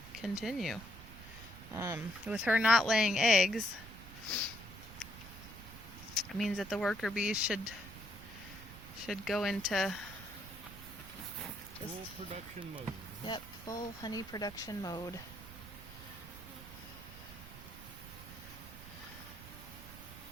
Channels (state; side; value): noise; right; rumble, 14 dB below the sound